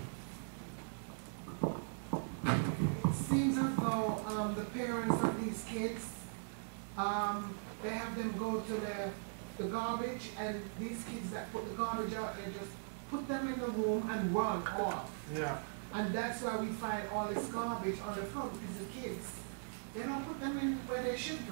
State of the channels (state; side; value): silent; left; digital silence